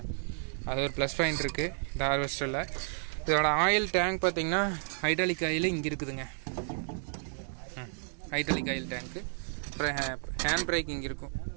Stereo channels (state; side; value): silent; left; digital silence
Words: அது ஒரு ப்ளஸ் பாயிண்ட் இருக்குது இந்த ஹார்வெஸ்டரில். இதோட ஆயில் டேங்க் பார்த்தீங்கன்னா ஹைட்ராலிக் ஆயில் இங்கே இருக்குதுங்க, ஹைட்ராலிக் ஆயில் டேங்க்கு. அப்புறம் ஹேண்ட் பிரேக் இங்கே இருக்கும்.